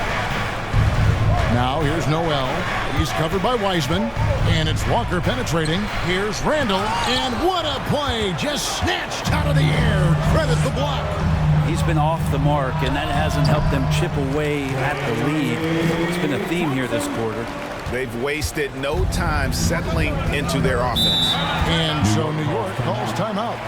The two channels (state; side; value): identical; both; correlation 1.00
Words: Now here's Noel. He's covered by Wiseman, and it's Walker penetrating. Here's Randall, and what a play! Just snatched out of the air. Credit the block. He's been off the mark, and that hasn't helped them chip away at the lead. It's been a theme here this quarter. They've wasted no time settling into their offense. And so New York calls timeout.